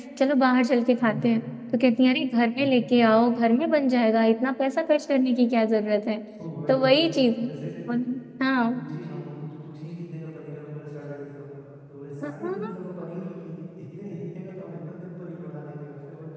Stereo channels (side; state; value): both; identical; correlation 1.00